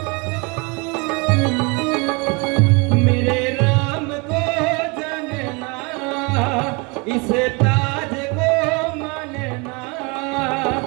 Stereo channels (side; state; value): left; quieter; 29.3 dB